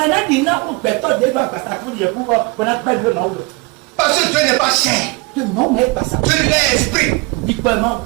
Parce que Dieu n'est pas chair. Dieu est esprit.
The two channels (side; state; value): left; quieter; 25.0 dB